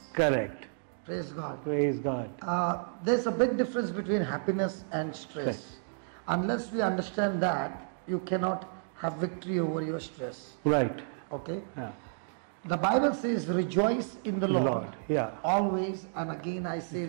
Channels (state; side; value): silent; left; digital silence